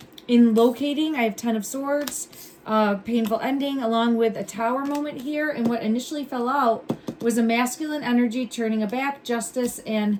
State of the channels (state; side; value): identical; both; correlation 1.00